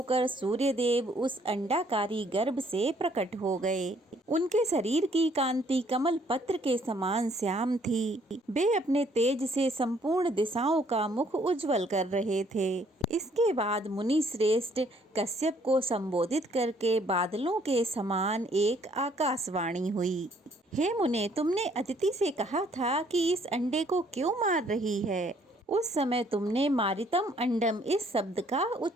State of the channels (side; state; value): both; normal; correlation 0.64